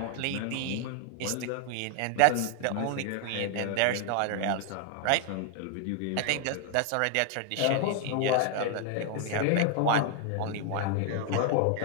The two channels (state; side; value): different; both; correlation 0.00